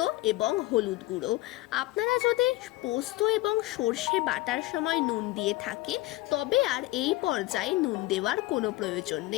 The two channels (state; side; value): quieter; right; 18.3 dB